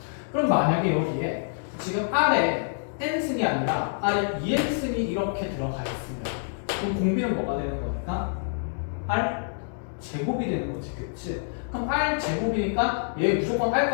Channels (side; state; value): right; silent; digital silence